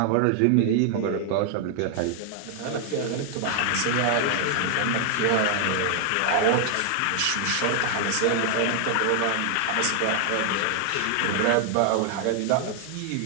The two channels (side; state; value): both; different; correlation 0.00